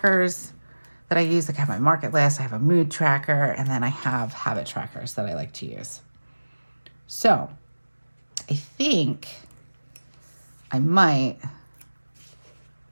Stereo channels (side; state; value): both; inverted; correlation -1.00